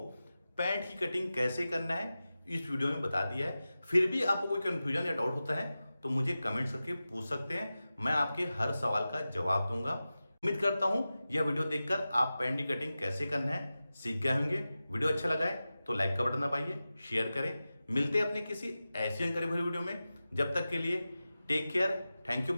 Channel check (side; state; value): both; inverted; correlation -0.95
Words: पैंट की कटिंग कैसे करना है इस वीडियो में बता दिया है। फिर भी आपको कोई कंफ्यूजन या डाउट होता है तो मुझे कमेंट करके पूछ सकते हैं, मैं आपके हर सवाल का जवाब दूंगा। उम्मीद करता हूं यह वीडियो देखकर आप पैंट की कटिंग कैसे करना है सीख गए होंगे। वीडियो अच्छा लगा है तो लाइक का बटन दबाइए, शेयर करें। मिलते हैं अपने किसी ऐसी जानकारी भरी वीडियो में। जब तक के लिए take care, thank you